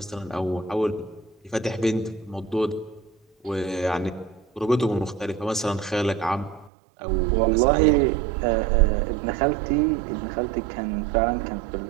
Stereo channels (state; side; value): drops out; left; at 6.7 s